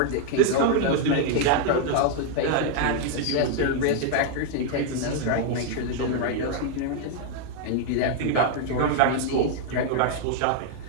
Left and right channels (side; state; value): both; different; correlation 0.00